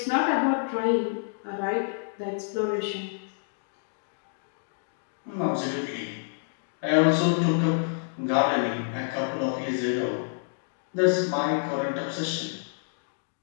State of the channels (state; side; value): silent; right; digital silence